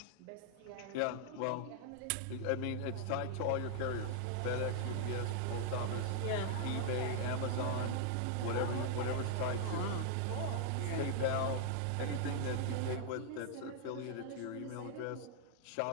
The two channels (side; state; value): both; different; correlation -0.01